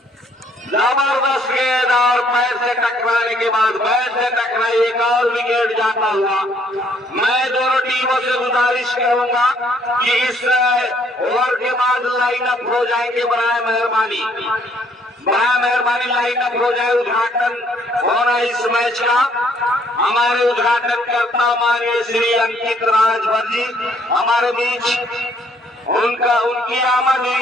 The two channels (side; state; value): both; normal; correlation 0.65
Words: जबरदस्त गेंद और पैर से टकराने के बाद बैट से टकराई, एक और विकेट जाता हुआ। मैं दोनों टीमों से गुजारिश करूंगा कि इस ओवर के बाद लाइन अप हो जाएंगे बराए मेहरबानी। बड़ा मेहरबानी लाइनअप हो जाए, उद्घाटन होना इस मैच का। हमारे उद्घाटन करता माननीय श्री अंकित राजभर जी हमारे बीच, उनकी आमद हुई